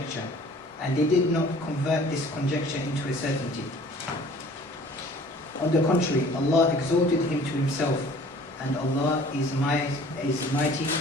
and they did not convert this conjecture into a certainty. On the contrary, Allah exalted him to himself, and Allah is mighty,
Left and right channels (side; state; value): both; normal; correlation 0.50